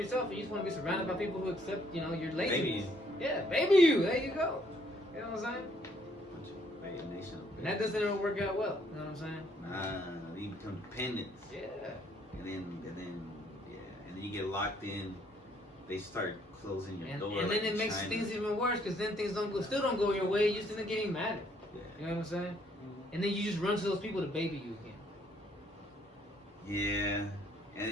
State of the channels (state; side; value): normal; both; correlation 0.67